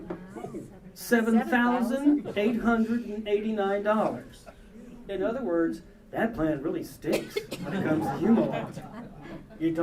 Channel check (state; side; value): identical; both; correlation 1.00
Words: $7,889. In other words, that plan really stinks when it comes to Greenwald. You